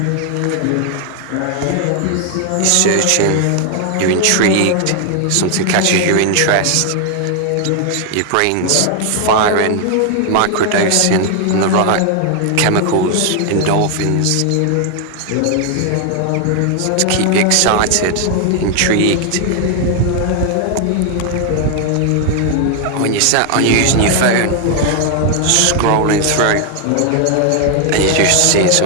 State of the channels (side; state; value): both; different; correlation 0.00